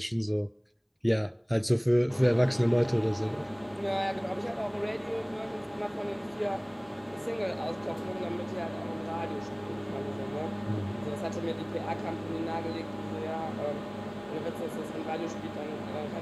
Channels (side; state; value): both; identical; correlation 1.00